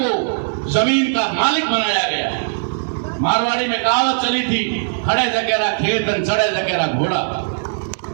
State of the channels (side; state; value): left; silent; digital silence